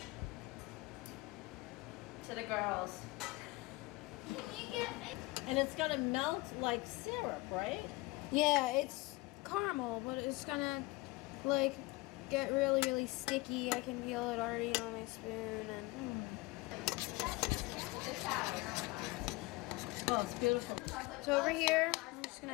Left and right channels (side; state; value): right; quieter; 22.6 dB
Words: to the girls. And it's gonna melt like syrup, right? Yeah, it's caramel, but it's gonna get really, really sticky. I can feel it already on my spoon. And Oh, it's beautiful. so over here, I'm just